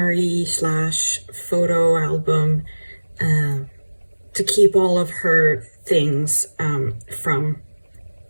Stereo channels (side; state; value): both; inverted; correlation -1.00